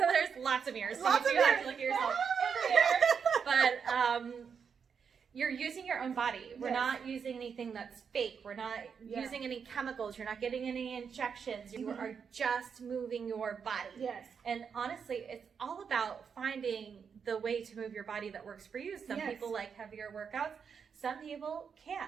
lots of mirrors. So you do have to look at yourself in the mirror. But you're using your own body. We're not using anything that's fake. We're not using any chemicals. You're not getting any injections. You are just moving your body. Yes. And honestly, it's all about finding the way to move your body that works for you. Some people like heavier workouts. Some people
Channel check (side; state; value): left; quieter; 6.5 dB